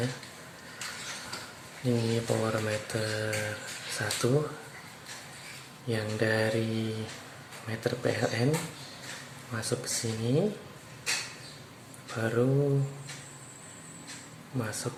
Ini power meter 1 yang dari meter PLN masuk ke sini, baru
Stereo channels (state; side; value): identical; both; correlation 1.00